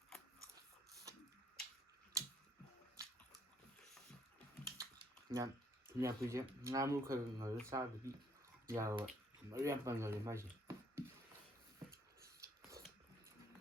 ꯊꯨꯝꯌꯥꯛꯄꯤꯁꯦ ꯉꯥ ꯃꯔꯨ ꯈꯔ ꯉꯧꯔꯒ ꯆꯥꯕꯗꯤ ꯌꯥꯔꯣꯏ ꯃꯔꯨ ꯌꯥꯝ ꯄꯟꯒꯜꯂꯤ ꯃꯥꯏꯁꯦ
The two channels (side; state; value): both; normal; correlation 0.66